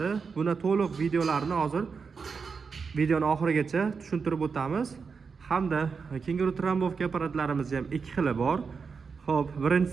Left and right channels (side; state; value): left; quieter; 5.4 dB